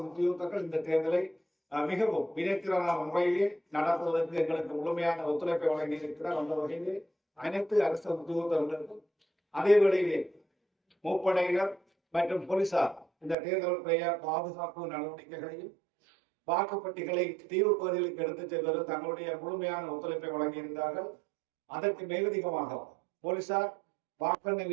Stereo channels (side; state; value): left; drops out; at 13.4 s